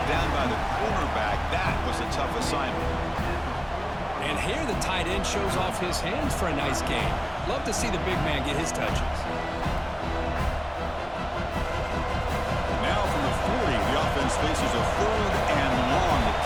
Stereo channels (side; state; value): both; identical; correlation 1.00